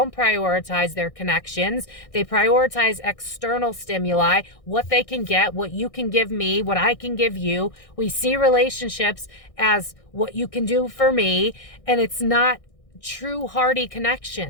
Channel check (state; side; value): late; right; 1.6 ms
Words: prioritize their connections. They prioritize external stimuli, what they can get, what you can give me, what I can give you. We see relationships as what you can do for me, and it's not true hearty